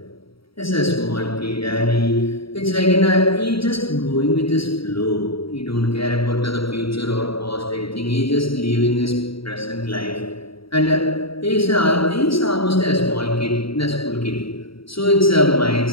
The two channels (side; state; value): right; late; 0.75 ms